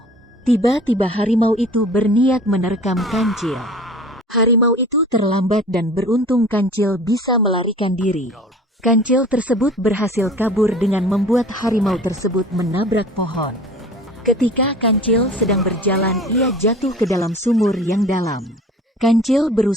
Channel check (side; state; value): both; normal; correlation 0.43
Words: Tiba-tiba harimau itu berniat menerkam kancil. Harimau itu terlambat dan beruntung kancil bisa melarikan diri. Kancil tersebut berhasil kabur dengan membuat harimau tersebut menabrak pohon. Ketika kancil sedang berjalan, ia jatuh ke dalam sumur yang dalam. Kancil